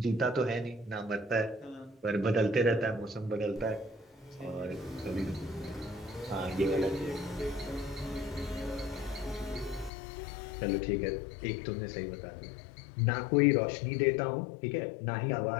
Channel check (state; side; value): drops out; right; at 9.9 s